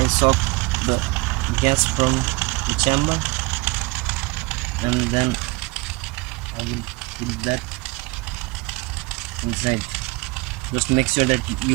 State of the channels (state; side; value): quieter; left; 24.7 dB